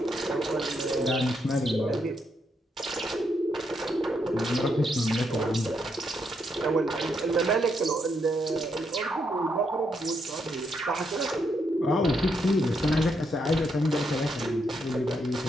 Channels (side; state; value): both; normal; correlation 0.78